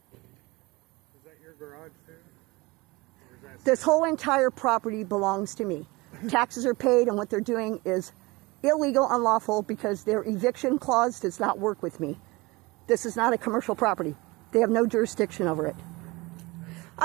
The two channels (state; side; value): quieter; left; 23.5 dB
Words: Is that your garage too? Or is that This whole entire property belongs to me. Taxes are paid, and what they're doing is illegal, unlawful, because their eviction clause does not work with me. This is not a commercial property. They have no jurisdiction over it.